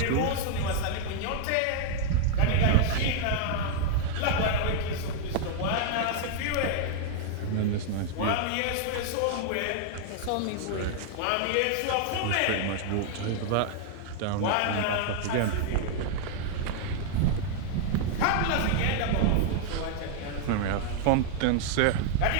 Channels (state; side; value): different; both; correlation 0.00